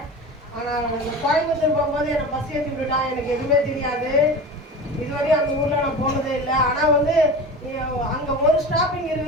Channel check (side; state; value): both; normal; correlation 0.32